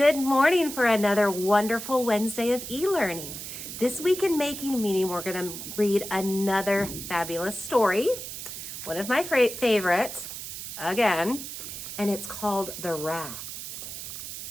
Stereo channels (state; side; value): noise; right; hiss, 9 dB below the sound